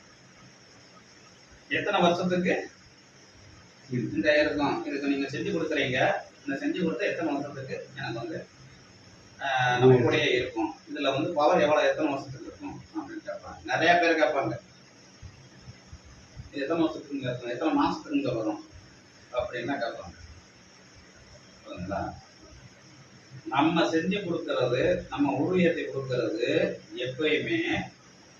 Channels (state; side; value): identical; both; correlation 1.00